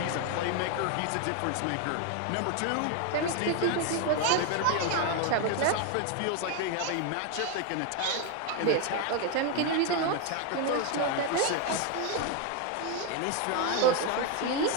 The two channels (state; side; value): different; both; correlation 0.01